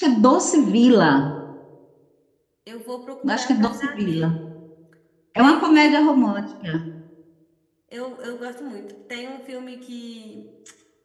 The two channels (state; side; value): identical; both; correlation 1.00